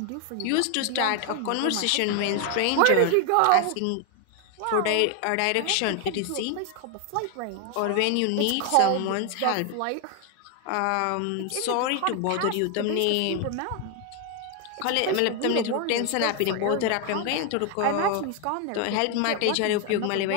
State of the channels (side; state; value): both; different; correlation 0.01